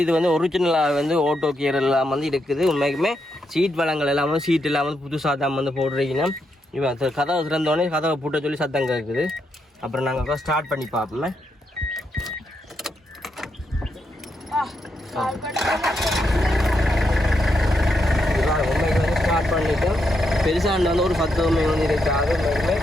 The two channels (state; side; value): normal; both; correlation 0.81